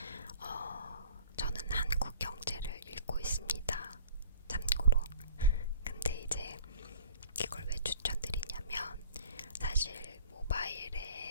저는 한국 경제를 읽고 있습니다. 참고로. 근데 이제 이걸 왜 추천드리냐면, 사실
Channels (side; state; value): both; inverted; correlation -0.47